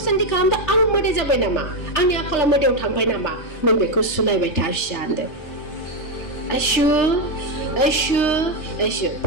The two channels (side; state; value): right; late; 3.3 ms